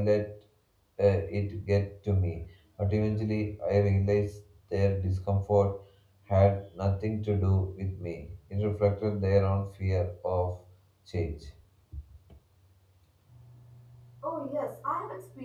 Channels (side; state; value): both; identical; correlation 1.00